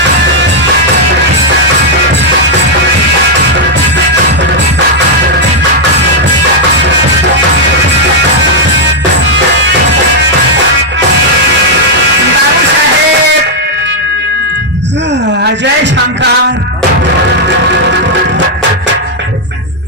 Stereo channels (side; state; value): both; normal; correlation -0.02